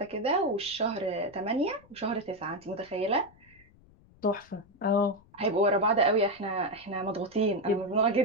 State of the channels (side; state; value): left; noise; rumble, 28 dB below the sound